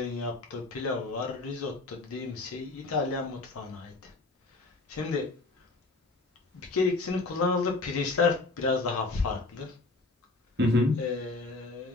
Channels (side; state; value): right; quieter; 3.3 dB